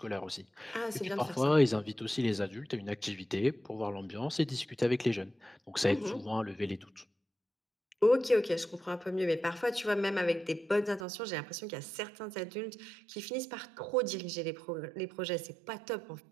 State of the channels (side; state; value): left; drops out; at 11.1 s